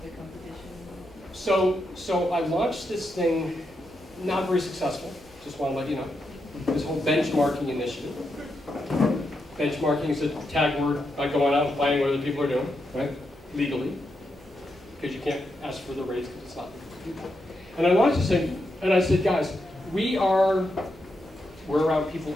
the competition? So I launched this thing, not very successful. Just want to let you know. This whole benchmarking initiative. Benchmarking is a tag word by going out and finding what other people are doing, right? Legally. Because you can't ask for the raise because it's not legal for people. And I launched this thing, and I said, guys, we're around people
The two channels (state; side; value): normal; both; correlation 0.84